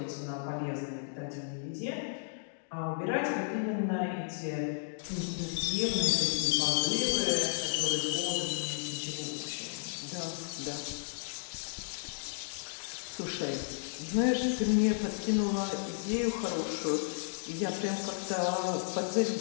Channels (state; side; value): silent; right; digital silence